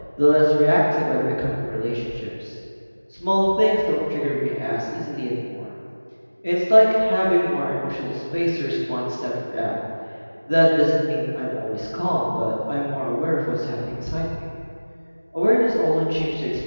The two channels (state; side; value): inverted; both; correlation -1.00